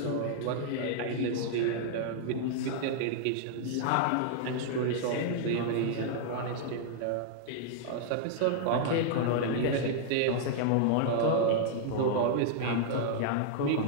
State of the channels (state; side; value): different; both; correlation -0.01